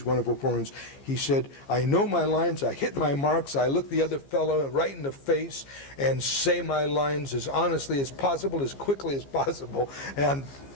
wonderful performances? He said, I know my lines, I hit my marks, I look the other fellow right in the face and say my lines as honestly as possible, as quickly as possible. And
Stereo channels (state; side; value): late; right; 15 ms